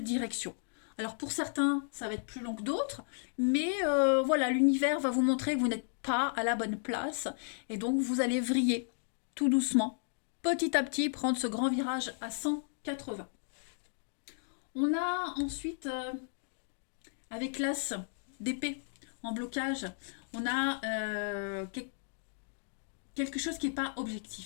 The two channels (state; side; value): silent; right; digital silence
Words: direction. Alors pour certains, ça va être plus long que d'autres, mais voilà, l'univers va vous montrer que vous n'êtes pas à la bonne place, et donc vous allez vriller tout doucement, petit à petit, prendre ce grand virage à 180. On a ensuite, avec l'as d'épée en blocage, on a quelque chose qui n'est pas